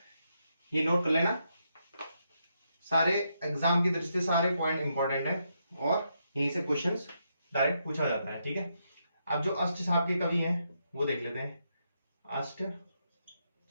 ये नोट कर लेना, सारे एग्जाम की दृष्टि से सारे पॉइंट इंपॉर्टेंट है और यहीं से क्वेश्चंस डायरेक्ट पूछा जाता है। ठीक है, अब जो अष्टछाप के कवि हैं वो देख लेते हैं।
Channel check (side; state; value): both; inverted; correlation -0.80